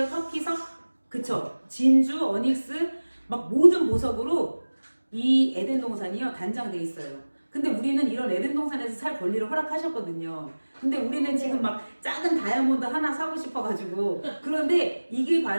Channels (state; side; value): inverted; both; correlation -1.00